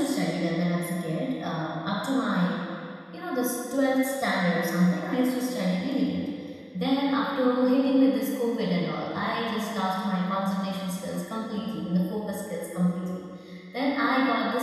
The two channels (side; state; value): both; identical; correlation 1.00